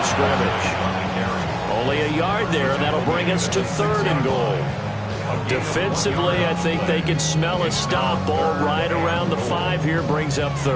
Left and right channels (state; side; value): identical; both; correlation 1.00